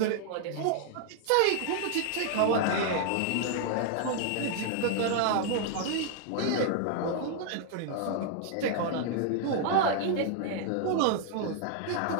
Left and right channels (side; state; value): both; different; correlation 0.00